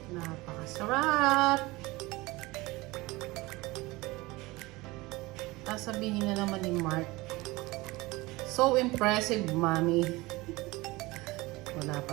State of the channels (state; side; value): quieter; left; 21.5 dB